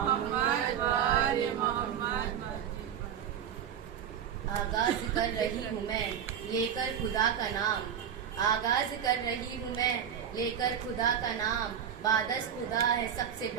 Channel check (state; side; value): quieter; left; 8.6 dB